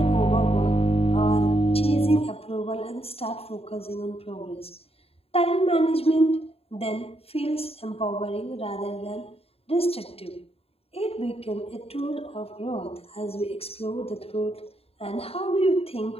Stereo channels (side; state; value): right; late; 0.28 ms